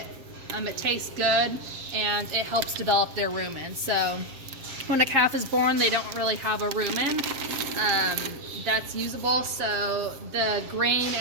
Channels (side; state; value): left; late; 7.5 ms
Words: It tastes good, and it helps develop their rumen. So when a calf is born, they don't really have a rumen that's usable, so the grain